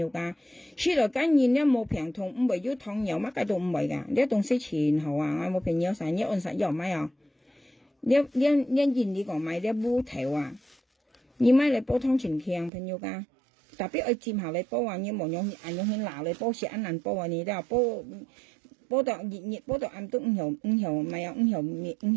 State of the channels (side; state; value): left; drops out; at 12.7 s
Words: 家，食落緊然呢冇病痛，唔會有糖油乜嘢都唔會噶，呢東西全好啊，我冇朋友成日按實有買啊，呢你講買呢烏頭啊，你買嚟煲湯全強朋友家，特別愛煎下嚟煲啊，你冇用去鬧嚟煲食一難煲啊，你都煲到熱煲到暗都唔後咪有唔後